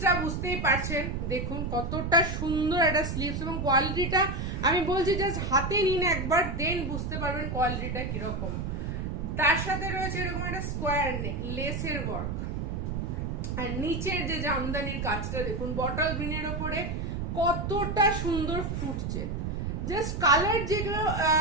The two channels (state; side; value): noise; right; rumble, 3 dB below the sound